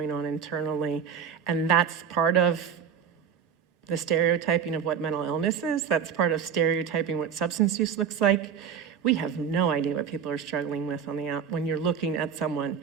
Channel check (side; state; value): left; quieter; 7.7 dB